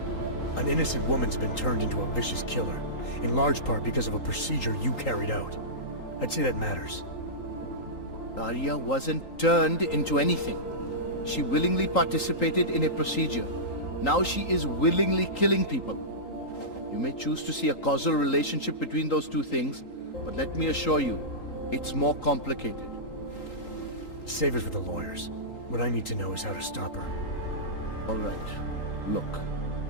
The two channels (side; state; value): right; late; 3.8 ms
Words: An innocent woman's been turned into a vicious killer, in large part because of a procedure you carried out. I'd say that matters. Daria wasn't turned into anything. She willingly participated in a procedure. Now she is willingly killing people. You may choose to see a causal relationship between those two things, but let me assure you, it's more complicated. Save it for the lawyers. What I need to know is how to stop her. All right. Look,